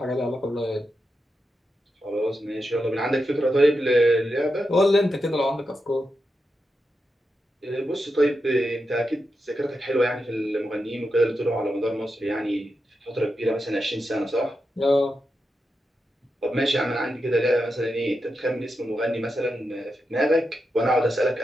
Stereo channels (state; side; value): normal; both; correlation 0.88